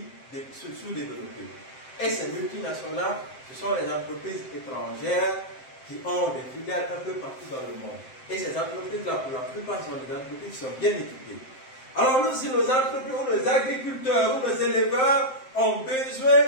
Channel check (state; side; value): late; right; 7.7 ms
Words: sous-développés. Et ces multinationales, ce sont les entreprises étrangères qui ont des filiales un peu partout dans le monde. Et ces entreprises-là, pour la plupart, sont des entreprises qui sont bien équipées. Alors nous, si nos entreprises, ou nos agriculteurs, ou nos éleveurs ont besoin